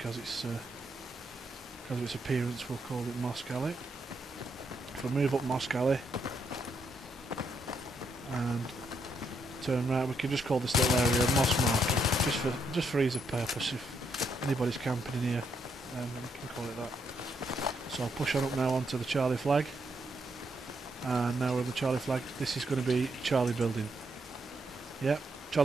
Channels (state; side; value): normal; both; correlation 0.77